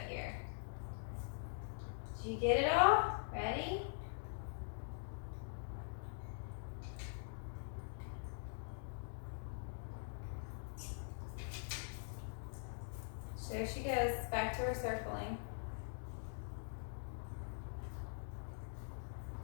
here. Did you get it all? Ready? There she goes, back to her circling.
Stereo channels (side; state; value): right; silent; digital silence